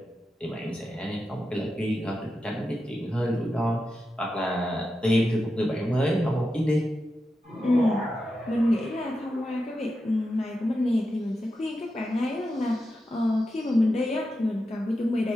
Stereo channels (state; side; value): normal; both; correlation 0.89